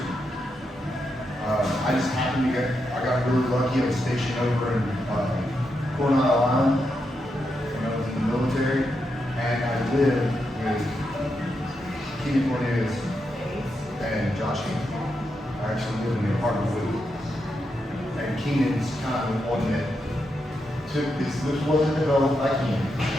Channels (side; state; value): both; normal; correlation 0.84